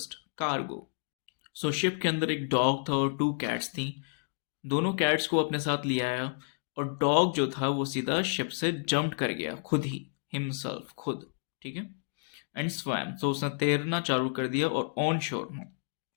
cargo. Ship के अंदर एक डॉग था और 2 कैट्स थी। दोनों कैट्स को अपने साथ ले आया, और डॉग जो था वो सीधा शिप से जंप कर गया, खुद ही, हिमसेल्फ, खुद। ठीक है, एंड स्वैम, उसने तैरना चालू कर दिया और ऑन शोर में,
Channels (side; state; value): right; silent; digital silence